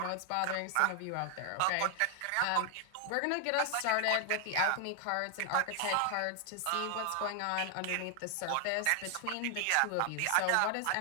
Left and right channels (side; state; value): both; different; correlation 0.00